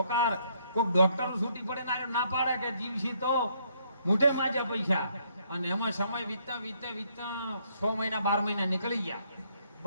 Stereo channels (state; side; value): inverted; both; correlation -0.70